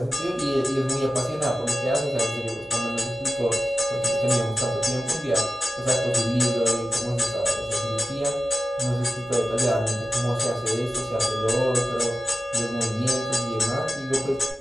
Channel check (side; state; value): both; normal; correlation 0.93